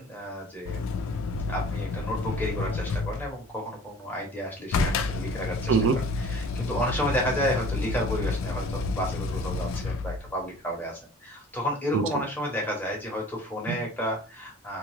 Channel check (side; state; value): both; normal; correlation 0.47